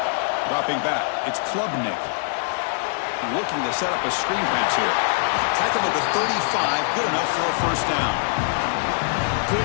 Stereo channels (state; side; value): silent; right; digital silence